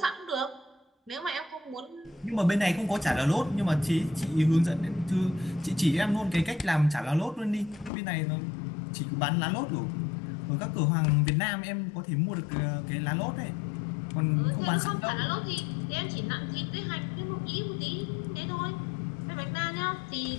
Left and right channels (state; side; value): drops out; right; at 7.9 s